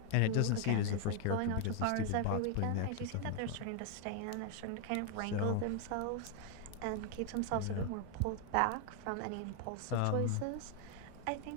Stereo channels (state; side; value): different; both; correlation 0.00